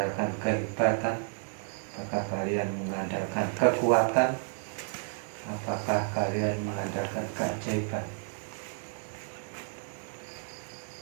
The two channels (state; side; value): silent; left; 57 dB below the other